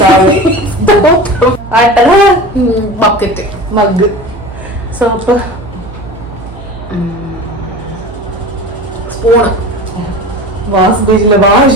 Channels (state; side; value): noise; right; hum, 15 dB below the sound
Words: bucket, mug, soap, spoon, wash basin,